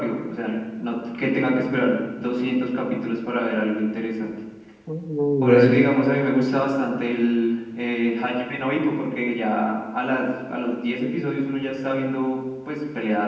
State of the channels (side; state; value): both; identical; correlation 1.00